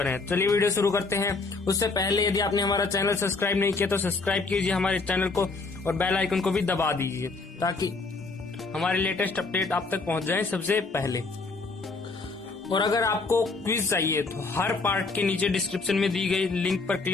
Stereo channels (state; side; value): quieter; right; 3.9 dB